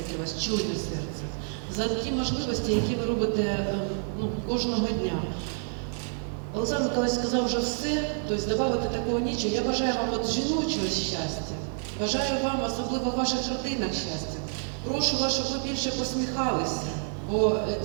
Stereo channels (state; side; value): silent; left; 59 dB below the other